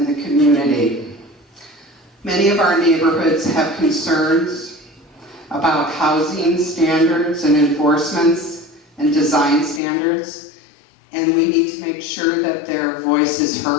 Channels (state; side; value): drops out; right; at 9.8 s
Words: the community. Many of our neighborhoods have concerns about housing standards and enforcements and design standards, and we need to make sure that their voice is